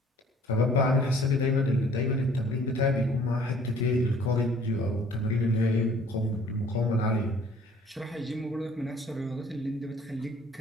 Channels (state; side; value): normal; both; correlation 0.55